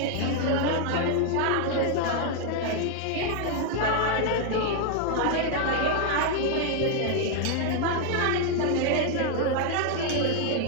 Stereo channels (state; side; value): different; both; correlation 0.00